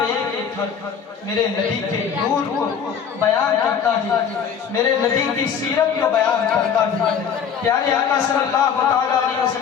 ایک ایک حرف میرے نبی کے نور کو بیان کرتا ہے, میرے نبی کی سیرت کو بیان کرتا ہے. پیارے آقا صلی اللہ تعالیٰ علیہ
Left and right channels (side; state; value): right; quieter; 7.4 dB